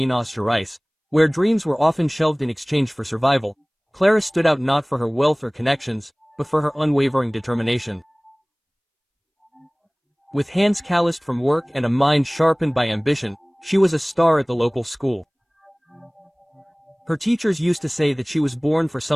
Gerais, where dreams were often shelved in exchange for survival, Clara stood out not for her wealth or connections, but for her unwavering determination. With hands calloused from work and a mind sharpened by ambition, she was a star at the local school. Her teachers used to say that she was born for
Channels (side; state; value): both; identical; correlation 1.00